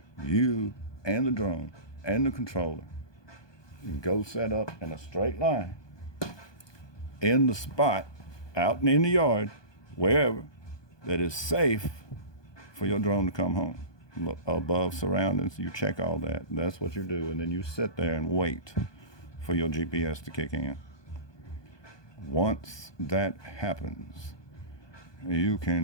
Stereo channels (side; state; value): right; late; 1.2 ms